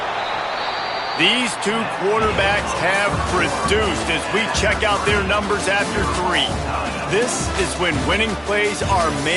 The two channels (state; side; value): identical; both; correlation 1.00